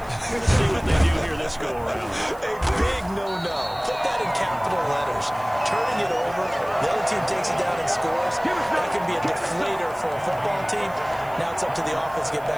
Let's see what they do here this go-around. A big no-no. Put that in capital letters. Turning it over, the other team takes it down and scores. That can be a deflator for a football team. Now it's up to the offense to get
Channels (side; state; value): right; noise; hiss, 24 dB below the sound